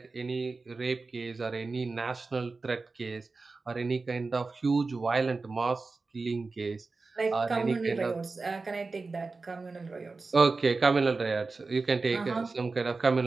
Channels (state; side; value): quieter; left; 3.9 dB